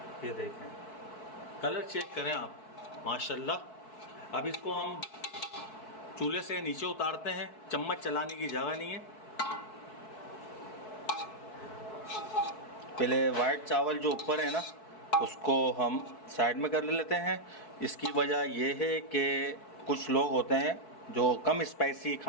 ये देखें, कलर चेक करें आप, माशाल्लाह। अब इसको हम चूल्हे से नीचे उतारते हैं, चम्मच चलाने की जगह नहीं है। पहले वाइट चावल जो ऊपर है ना, उसको हम साइड में कर लेते हैं। इसकी वजह यह है कि कुछ लोग होते हैं जो कम स्पाइसी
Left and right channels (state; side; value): late; right; 4.6 ms